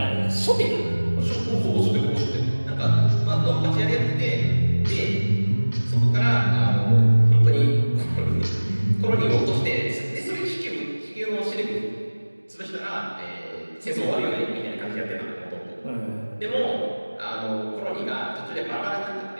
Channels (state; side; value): inverted; both; correlation -1.00